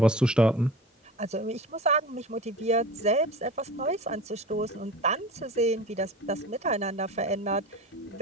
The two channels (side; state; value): both; normal; correlation 0.34